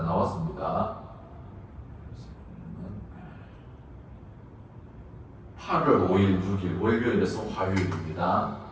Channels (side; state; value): both; identical; correlation 1.00